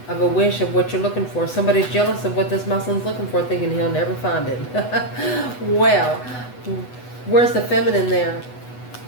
Of a wish of what you're looking for. Somebody's jealous of what this Muslim's looking for, thinking he'll never find it. Well, where's the feminine there?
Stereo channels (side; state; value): right; late; 8.1 ms